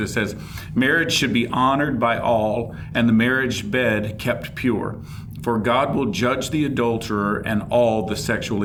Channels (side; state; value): both; identical; correlation 1.00